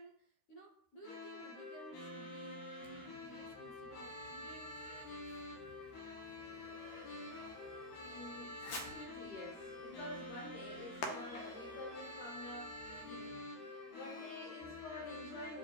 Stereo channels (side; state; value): right; late; 13 ms